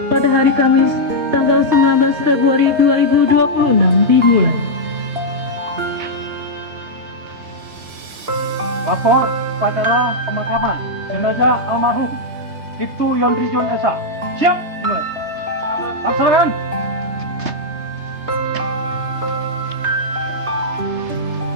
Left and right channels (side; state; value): left; late; 3.3 ms